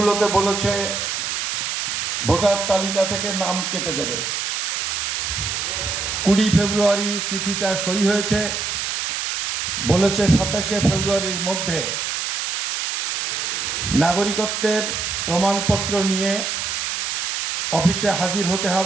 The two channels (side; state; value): right; noise; hiss, 2 dB below the sound